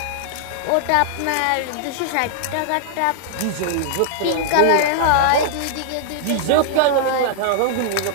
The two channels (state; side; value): different; both; correlation -0.01